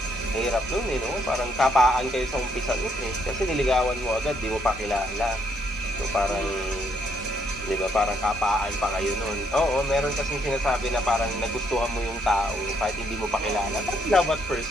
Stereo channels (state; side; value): normal; both; correlation 0.72